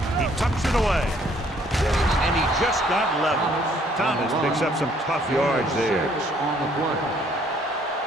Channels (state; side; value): normal; both; correlation 0.63